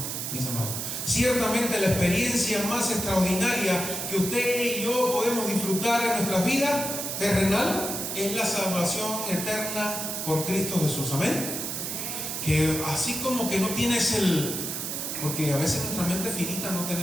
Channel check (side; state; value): right; noise; hiss, 4 dB below the sound